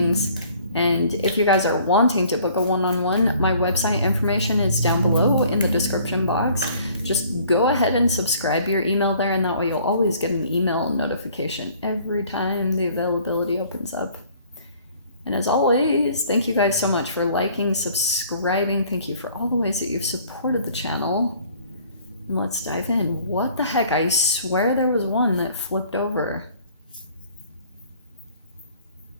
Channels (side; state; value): both; inverted; correlation -0.56